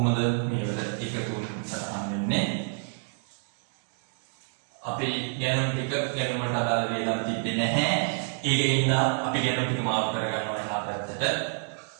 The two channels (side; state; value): left; silent; 59 dB below the other